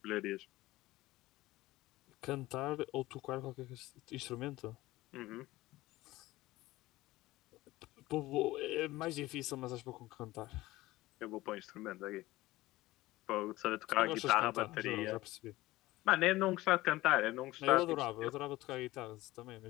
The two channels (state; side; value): quieter; right; 18.1 dB